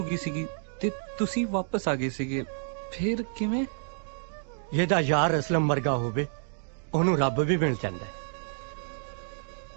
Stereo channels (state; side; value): silent; left; digital silence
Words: ਗਈ ਸੀਗੀ ਤੇ ਤੁਸੀਂ ਵਾਪਸ ਆ ਗਏ ਸੀਗੇ, ਫਿਰ ਕਿਵੇਂ? ਇਹਦਾ ਯਾਰ ਅਸਲਮ ਵਰਗਾ ਹੋਵੇ ਉਹਨੂੰ ਰੱਬ ਵੀ ਮਿਲ ਜਾਂਦਾ।